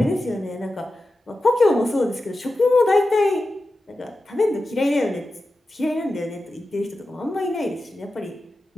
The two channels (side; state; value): both; normal; correlation 0.93